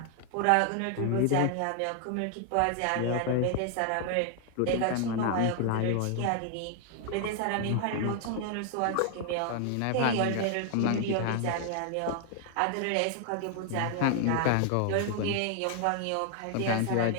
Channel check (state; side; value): different; both; correlation 0.00